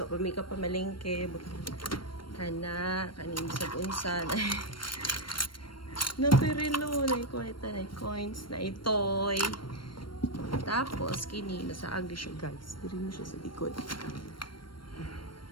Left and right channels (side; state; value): right; late; 0.72 ms